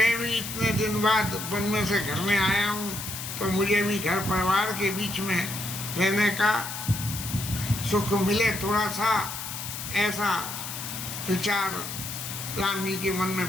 भी इतने दिन बाद वन में से घर में आया हूँ, तो मुझे भी घर परिवार के बीच में रहने का सुख मिले थोड़ा सा, ऐसा विचार राम जी के मन में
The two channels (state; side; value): noise; left; hiss, 7 dB below the sound